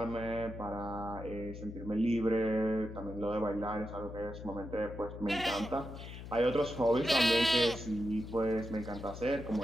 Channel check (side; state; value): left; noise; hum, 11 dB below the sound